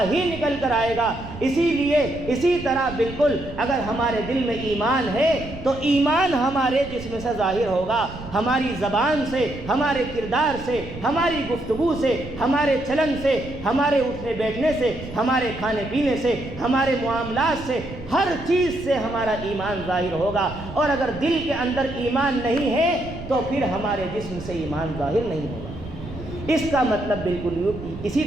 ہی نکل کر آئے گا۔ اسی طرح بالکل اگر ہمارے دل میں ایمان ہے تو ایمان ہمارے جسم سے ظاہر ہوگا، ہماری زبان سے، ہمارے کردار سے، ہماری گفتگو سے، ہمارے چلن سے، ہمارے اٹھنے بیٹھنے سے، ہمارے کھانے پینے سے، ہمارے معاملات سے، ہر چیز سے ہمارا ایمان ظاہر ہوگا۔ اور اگر دل کے اندر ایمان نہیں ہے تو پھر ہمارے جسم سے ایمان ظاہر نہیں ہوگا۔ اس کا مطلب بالکل اسی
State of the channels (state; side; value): noise; right; rumble, 14 dB below the sound